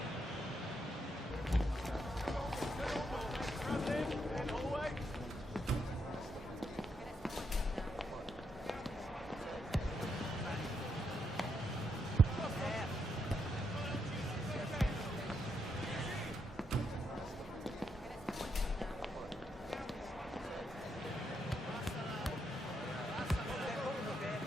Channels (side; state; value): both; normal; correlation 0.80